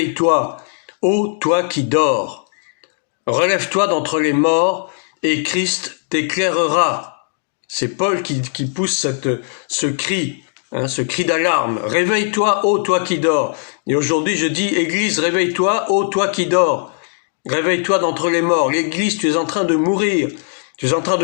ô toi qui dors, relève-toi d'entre les morts et Christ t'éclairera. » C'est Paul qui pousse ce cri, ce cri d'alarme. « Réveille-toi, ô toi qui dors. » Et aujourd'hui je dis « Église, réveille-toi, ô toi qui dors. Réveille-toi d'entre les morts. » L'Église, tu es en train de mourir. Tu es en train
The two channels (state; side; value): silent; right; digital silence